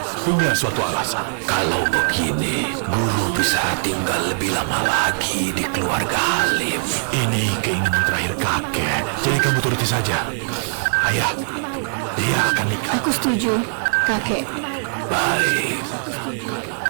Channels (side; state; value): left; silent; digital silence